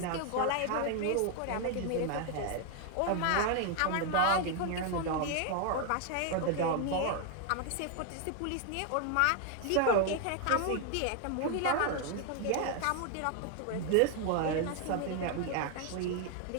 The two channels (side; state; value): both; different; correlation 0.01